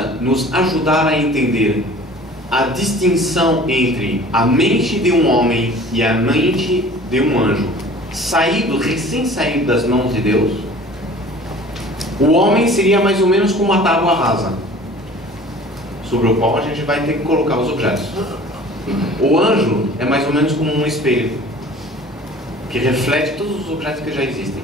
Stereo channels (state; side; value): normal; both; correlation 0.46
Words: nos ajudar a entender a distinção entre a mente de um homem e a mente de um anjo, recém saído das mãos de Deus. O homem seria mais ou menos como uma tábua rasa, sobre o qual a gente vai ter que colocar os objetos. O anjo é mais ou menos como um espelho, que reflete todos os objetos que já existem,